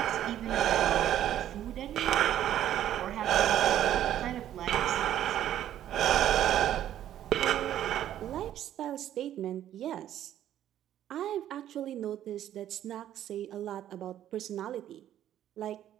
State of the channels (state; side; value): quieter; left; 11.6 dB